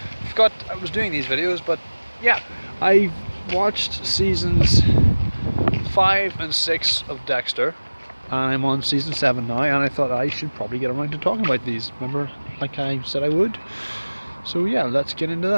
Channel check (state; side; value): inverted; both; correlation -1.00